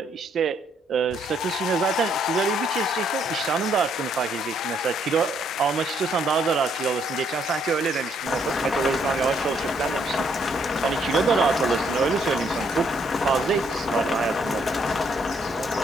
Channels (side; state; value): both; normal; correlation 0.70